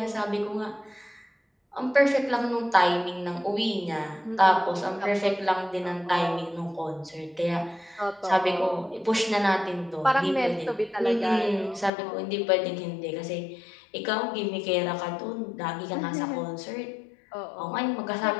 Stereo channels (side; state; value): right; drops out; at 11.9 s